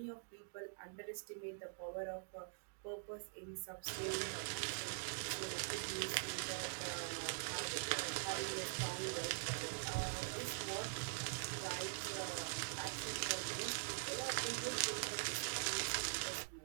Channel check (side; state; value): left; silent; digital silence